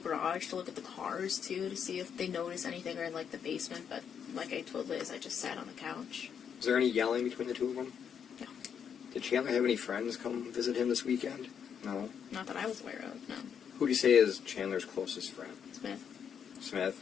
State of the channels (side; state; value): right; quieter; 7.7 dB